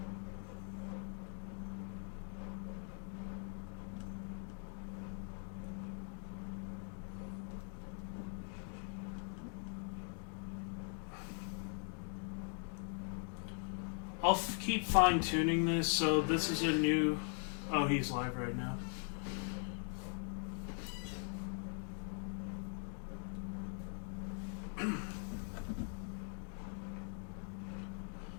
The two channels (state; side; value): silent; right; 50 dB below the other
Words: I'll keep fine-tuning this, so this is a new... Oh, he's live right now.